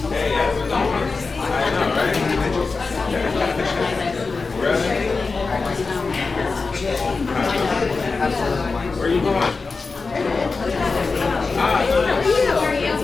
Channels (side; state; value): right; quieter; 4.2 dB